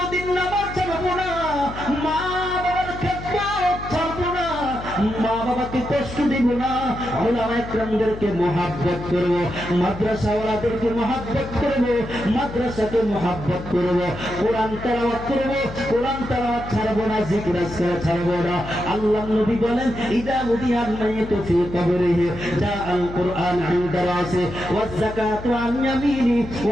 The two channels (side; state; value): left; noise; hum, 11 dB below the sound